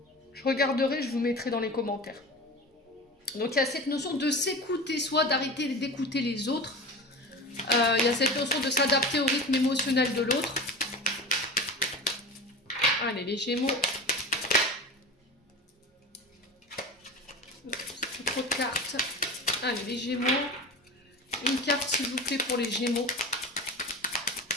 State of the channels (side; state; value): both; normal; correlation 0.31